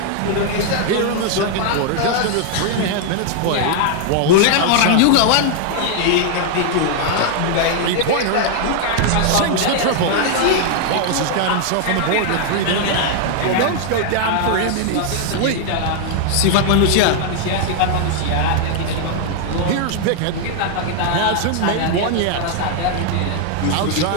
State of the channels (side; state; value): both; different; correlation 0.00